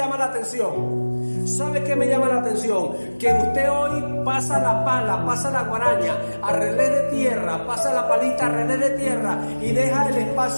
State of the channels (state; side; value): inverted; both; correlation -1.00